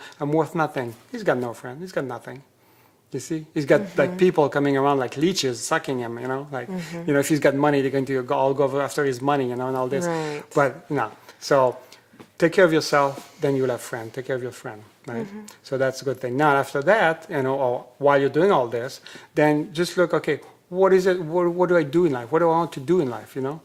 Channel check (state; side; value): identical; both; correlation 1.00